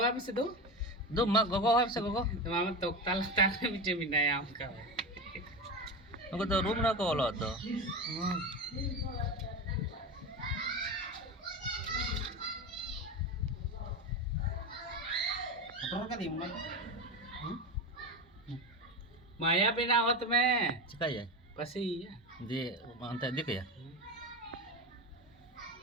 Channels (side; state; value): both; normal; correlation 0.21